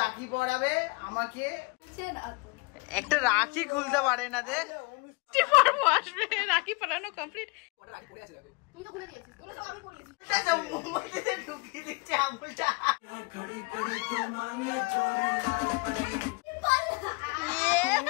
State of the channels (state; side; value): quieter; right; 29.3 dB